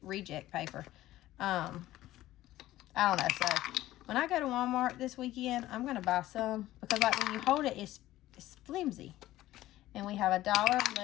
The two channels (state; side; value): quieter; right; 15.3 dB